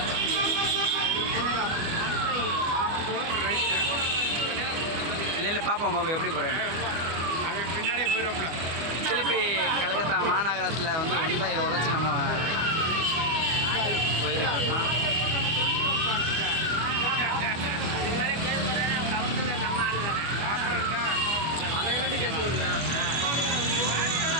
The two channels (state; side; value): late; left; 25 ms